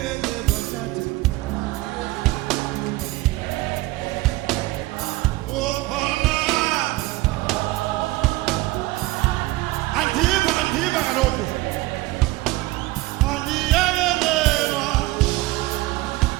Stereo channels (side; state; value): left; quieter; 19.4 dB